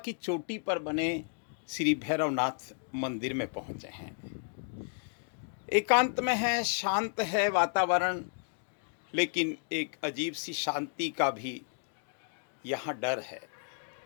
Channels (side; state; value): right; silent; 56 dB below the other